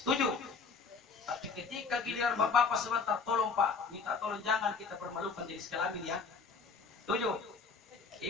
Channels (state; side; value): quieter; right; 5.0 dB